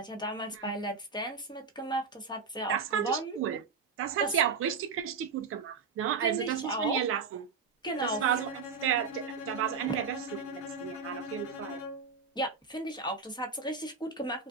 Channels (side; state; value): left; quieter; 5.2 dB